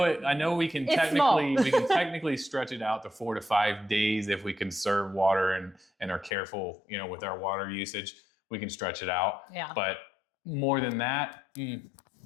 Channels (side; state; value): right; drops out; at 6.3 s